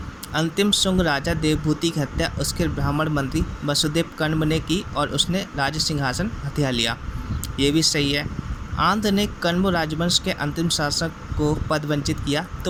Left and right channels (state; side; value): identical; both; correlation 1.00